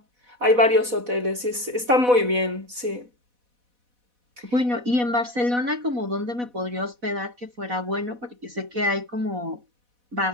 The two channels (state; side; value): late; left; 4.1 ms